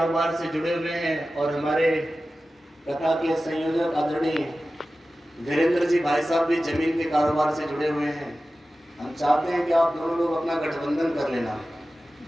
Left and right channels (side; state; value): both; normal; correlation 0.95